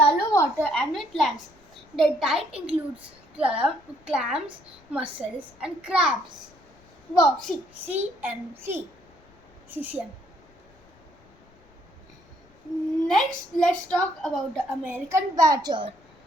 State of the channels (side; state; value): left; noise; rumble, 29 dB below the sound